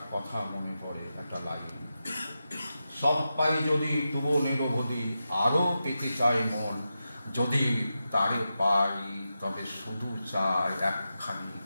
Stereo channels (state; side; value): inverted; both; correlation -0.90